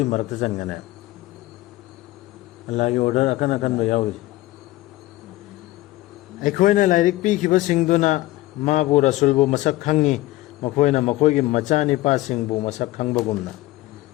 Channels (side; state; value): right; quieter; 17.5 dB